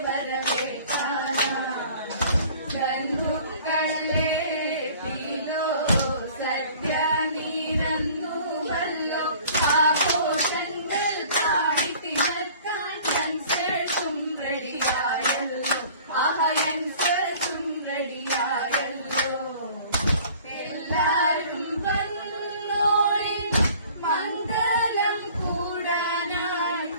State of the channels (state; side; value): inverted; both; correlation -0.50